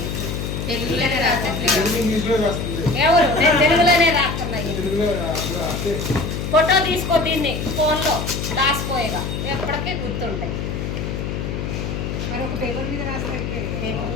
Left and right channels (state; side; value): noise; left; hum, 4 dB below the sound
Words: తెలుగులోనే రాసండి ఇంగ్లీష్లో వస్తుంది ఎవరు నేను తెలుగులోనే రాస్తున్నాయి తెలుగులో రాస్తే ఫోటో తీసుకో దీన్ని ఫోన్లో దాచిపోయేగా ఎప్పటికీ గుర్తుంటాయి మరొక పేపర్ మీద రాస్తే